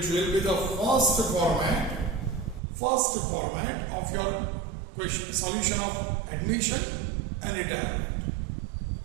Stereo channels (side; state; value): left; drops out; at 2.6 s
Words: will be the first format of your question, solution of admission and retirement.